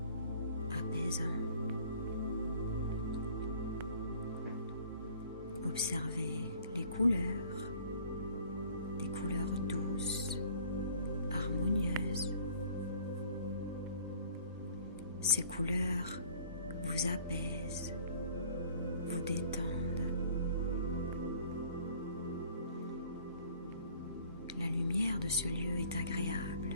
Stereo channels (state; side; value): inverted; both; correlation -0.53